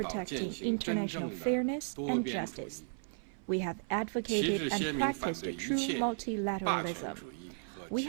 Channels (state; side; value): silent; left; 55 dB below the other